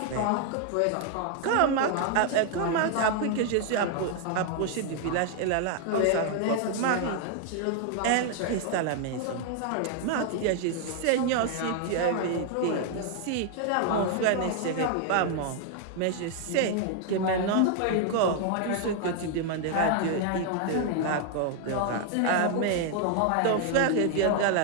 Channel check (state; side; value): different; both; correlation 0.00